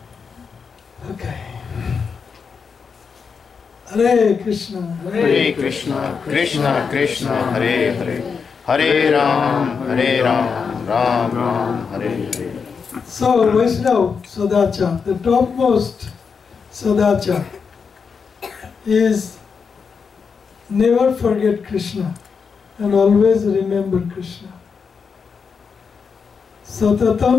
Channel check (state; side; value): quieter; right; 5.8 dB